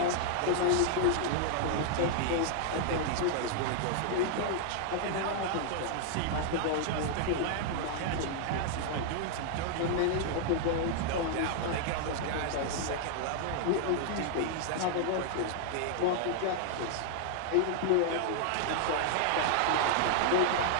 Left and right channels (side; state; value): both; different; correlation 0.00